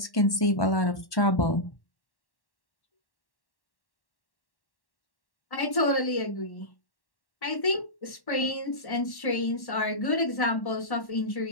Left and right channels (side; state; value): right; late; 1.1 ms